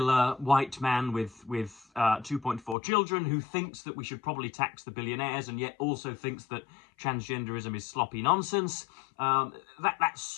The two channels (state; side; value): drops out; right; at 2.8 s